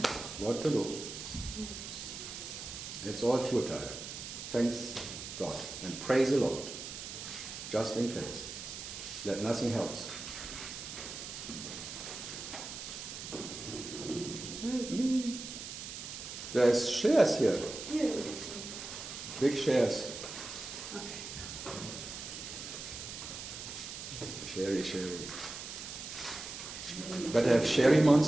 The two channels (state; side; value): noise; right; hiss, 9 dB below the sound